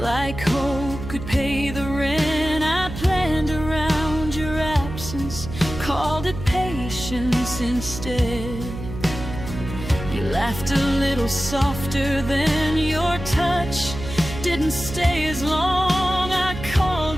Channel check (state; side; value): noise; right; hum, 9 dB below the sound